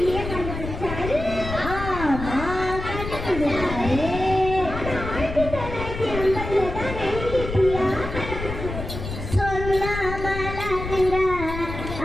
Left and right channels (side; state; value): left; noise; rumble, 7 dB below the sound